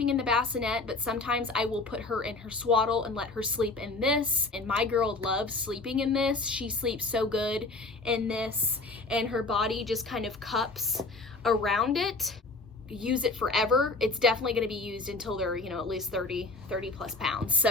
in the bassinet, but sometimes I will put her in her swaddle and let her sleep in this. And my girl loves sleeping in this. She sleeps so good in this, and her body just kind of cups around it. Use it forever. It's definitely going to be used until they're, you know, at least 30 plus pounds.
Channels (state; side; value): quieter; right; 3.4 dB